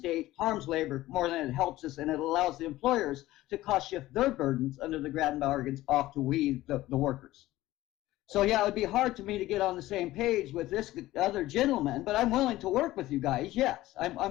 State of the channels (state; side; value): quieter; right; 16.5 dB